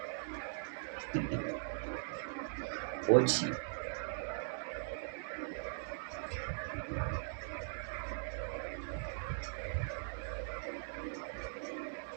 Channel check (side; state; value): left; silent; digital silence